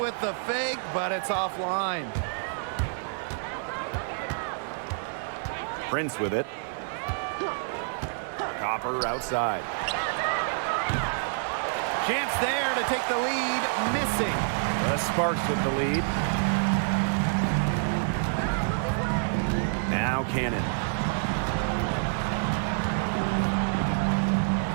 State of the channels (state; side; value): silent; left; 59 dB below the other